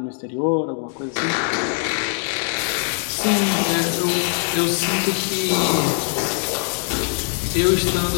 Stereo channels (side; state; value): right; silent; 56 dB below the other